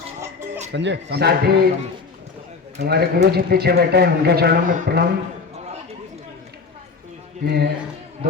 संजय साथ ही हमारे गुरु जी पीछे बैठे हैं, उनके चरणों में प्रणाम। मैं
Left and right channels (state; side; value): quieter; right; 4.7 dB